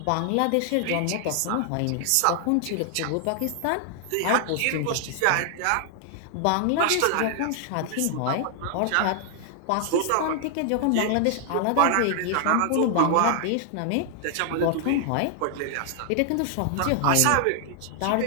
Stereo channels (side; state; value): both; different; correlation 0.00